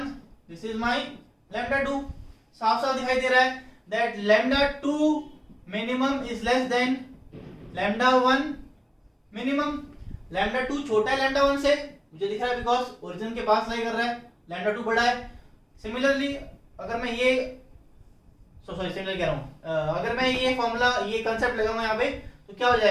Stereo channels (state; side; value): identical; both; correlation 1.00